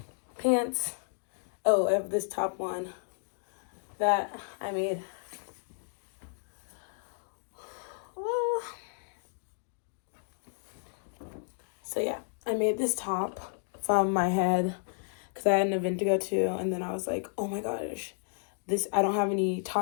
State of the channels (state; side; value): silent; right; digital silence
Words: pants. Oh, I have this top one that I made. Whoa. So yeah, I made this top from my head because I had an event to go to, and then I was like, oh my gosh, I don't have any